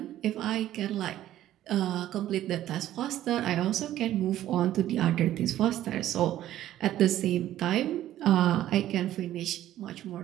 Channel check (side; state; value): left; quieter; 13.0 dB